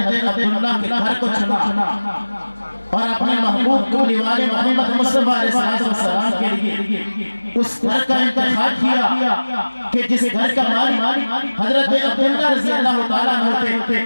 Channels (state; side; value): inverted; both; correlation -1.00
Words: عبداللہ کے گھر کو چنا اور اپنے محبوب کو والے محمد مصطفیٰ علیہ السلام کے لیے اس گھر کا انتخاب کیا کہ جس گھر کا مالک حضرت عبداللہ رضی اللہ تعالیٰ ہوتے،